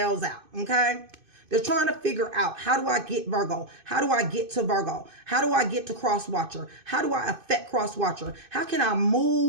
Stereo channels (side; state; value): left; late; 2.5 ms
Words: out, okay? They're trying to figure out, how do I get Virgo? How do I get to Virgo? How do I get to Cross Watcher? How do I affect cross watcher? How can I